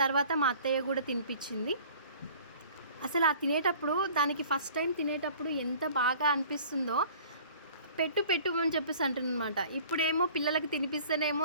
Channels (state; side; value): inverted; both; correlation -0.48